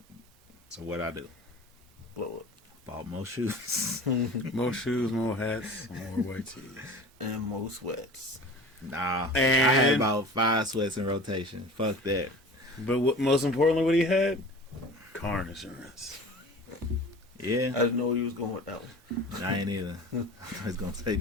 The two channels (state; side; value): normal; both; correlation 0.39